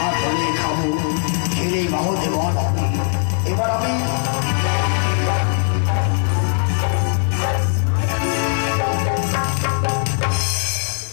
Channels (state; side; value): silent; right; 60 dB below the other